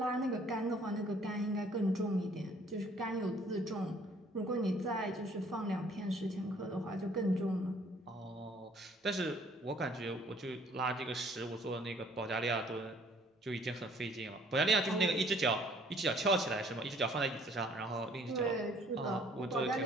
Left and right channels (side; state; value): both; normal; correlation 0.59